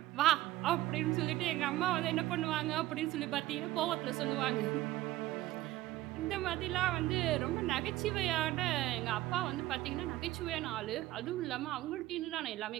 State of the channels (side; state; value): left; quieter; 16.3 dB